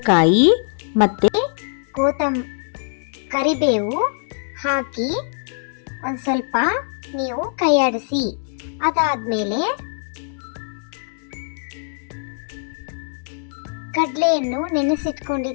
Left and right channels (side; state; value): right; silent; digital silence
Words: ಮತ್ತು ಕರಿಬೇವು ಹಾಕಿ ಒಂದು ಸ್ವಲ್ಪ ನೀವು ಕೈಯಾಡಿಸಿ. ಅದಾದಮೇಲೆ ಕಡಲೆಯನ್ನು